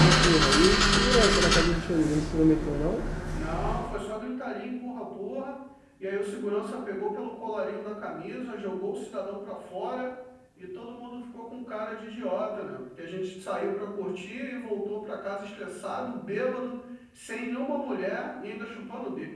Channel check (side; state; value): both; identical; correlation 1.00